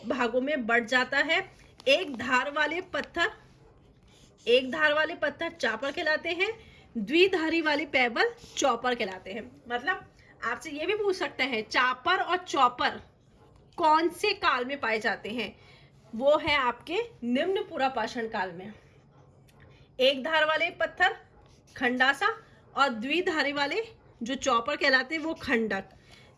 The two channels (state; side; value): identical; both; correlation 1.00